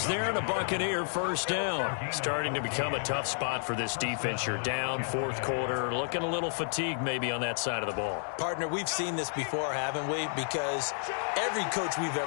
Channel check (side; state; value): right; silent; digital silence